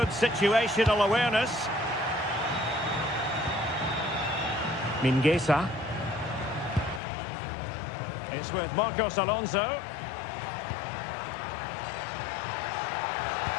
situational awareness. Mingueza. It's with Marcos Alonso.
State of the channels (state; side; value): drops out; right; at 7.0 s